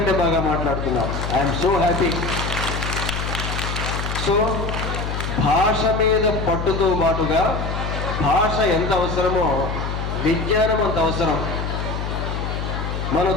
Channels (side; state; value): left; noise; hum, 4 dB below the sound